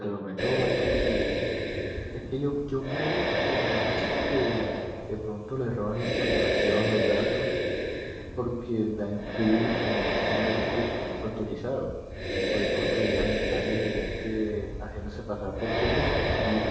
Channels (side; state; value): both; identical; correlation 1.00